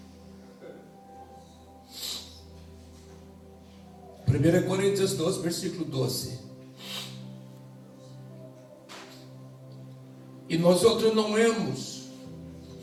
1 Coríntios 2, versículo 12. E nós outros não hemos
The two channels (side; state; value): both; identical; correlation 1.00